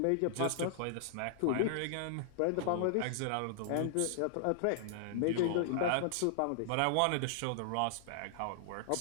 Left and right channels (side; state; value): both; different; correlation -0.01